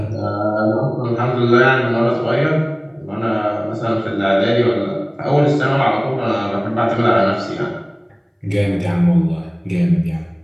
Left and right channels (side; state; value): both; identical; correlation 1.00